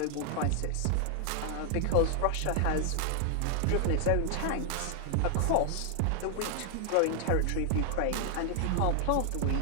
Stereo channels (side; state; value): both; different; correlation 0.00